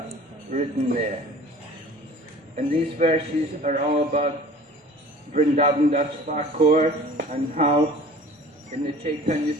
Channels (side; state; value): both; normal; correlation 0.45